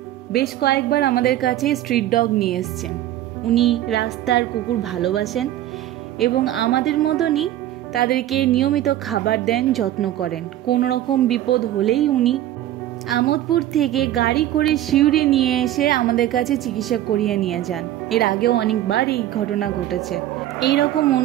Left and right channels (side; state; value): left; quieter; 13.3 dB